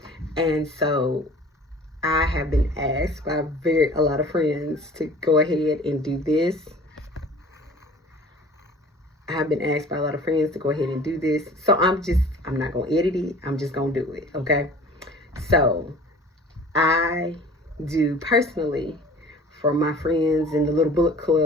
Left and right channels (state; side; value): normal; both; correlation 0.45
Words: and so I have been asked by a lot of friends to go ahead and do this. So I'm not going to edit it. I'm just going to do it, okay? So I do personally for my friends in the little book